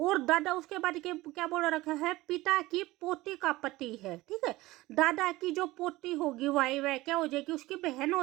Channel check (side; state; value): left; quieter; 19.0 dB